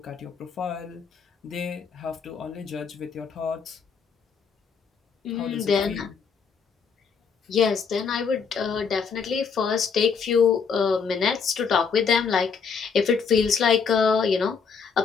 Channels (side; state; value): right; quieter; 5.9 dB